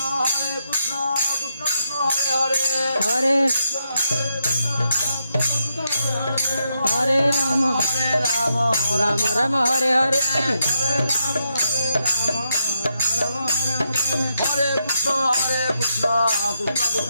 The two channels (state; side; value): inverted; both; correlation -0.82